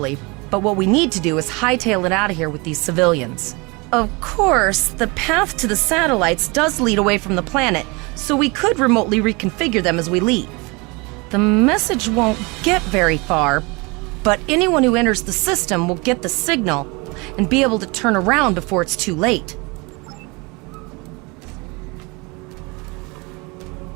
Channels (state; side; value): quieter; left; 27.2 dB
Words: but what we need to do is hightail it out of here with these civilians. Of course, the path to the satellites does lead away from the planet, so we could remotely reconfigure them as we leave. The message won't get very far, but anyone who enters the system will get the signal and be able to turn around before it's too late.